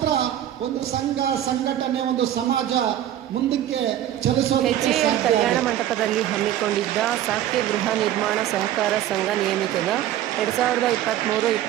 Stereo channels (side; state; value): left; quieter; 12.1 dB